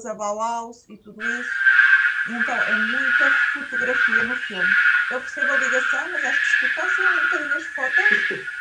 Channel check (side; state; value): both; identical; correlation 1.00